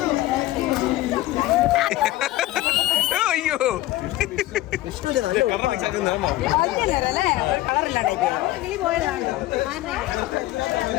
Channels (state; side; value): quieter; right; 16.4 dB